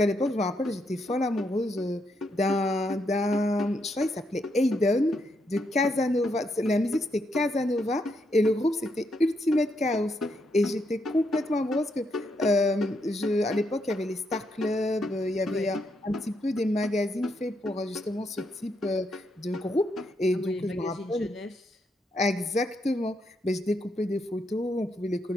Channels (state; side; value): normal; both; correlation 0.78